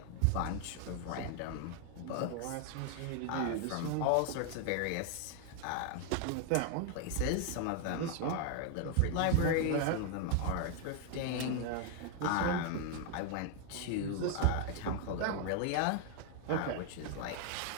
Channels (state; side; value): different; both; correlation 0.00